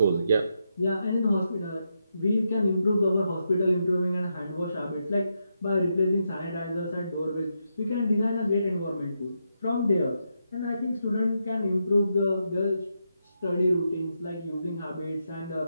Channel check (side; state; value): both; inverted; correlation -0.83